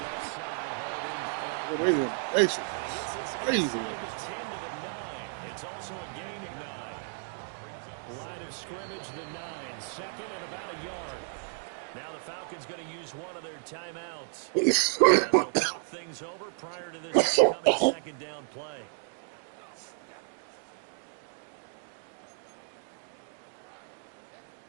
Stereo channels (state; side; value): silent; left; digital silence